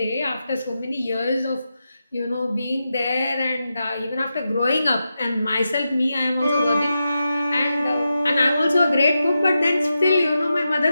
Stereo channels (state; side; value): inverted; both; correlation -0.89